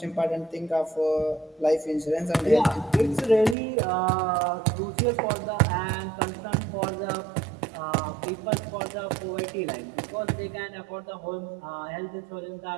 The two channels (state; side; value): drops out; left; at 3.6 s